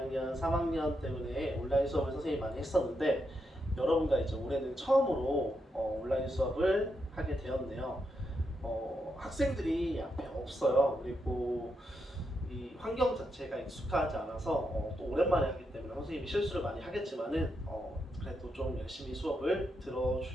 3학년 때문에 온라인 수업을 선생님이 많이 했었는데 여러분과 이제 올해는 처음으로 온라인 수업을 하게 되었네요. 학생들이 앞에 없어요. 그리고 이 환경 자체가 익숙하지 않아서 또 오랜만에 하기 때문에 선생님이 실수를 많이 하겠지만은 그래도 좀 열심히 수업을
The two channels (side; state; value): both; normal; correlation 0.83